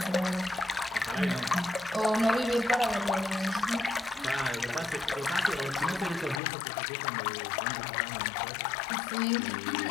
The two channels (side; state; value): right; drops out; at 6.4 s